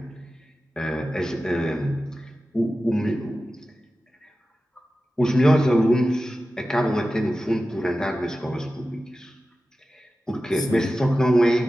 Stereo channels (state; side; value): normal; both; correlation 0.94